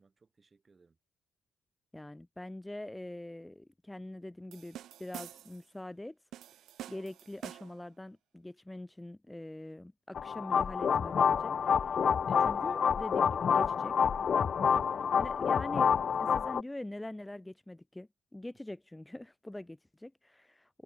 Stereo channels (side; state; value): right; quieter; 6.2 dB